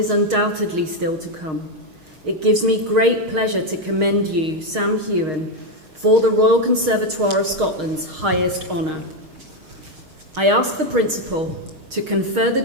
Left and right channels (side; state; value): left; late; 6.4 ms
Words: undoubtedly still to come, it gives me great pleasure to commend you, Sam Heughan, for the Royal Conservatoire of Scotland's highest honour. I ask the Principal to confer the